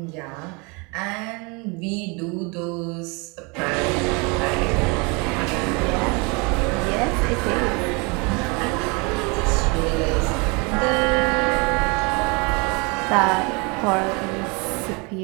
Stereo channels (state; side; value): quieter; left; 29.7 dB